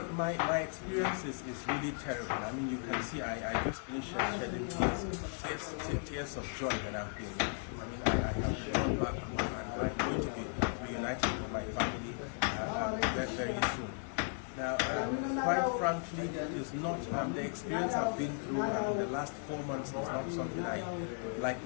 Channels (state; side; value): silent; right; 54 dB below the other